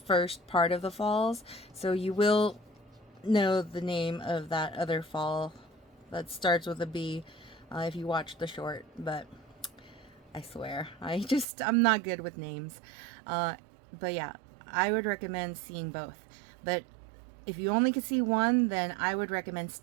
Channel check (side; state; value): left; drops out; at 11.5 s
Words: first part of the falls. So you will know the name of that other fall that starts with a B if you watch the short. But I swear, I'm not good with names. But yeah, I would recommend seeing both. But if you only could see one, then I would recommend